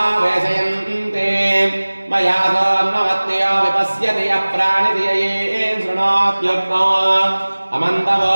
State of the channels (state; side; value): inverted; both; correlation -1.00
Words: वेशयन्ते मया सोन्नमत्यो विपश्यति यः प्राणितिये शृणोत्युक्तो अमन्तवो